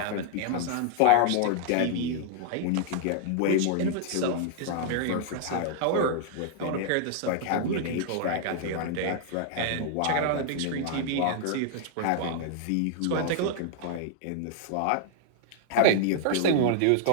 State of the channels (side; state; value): both; different; correlation -0.01